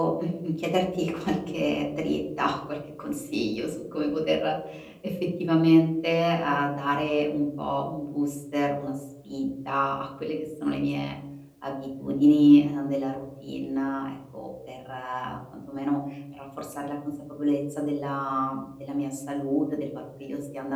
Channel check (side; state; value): both; identical; correlation 1.00